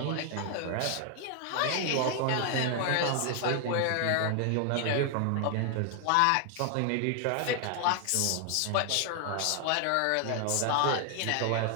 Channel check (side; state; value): both; different; correlation 0.00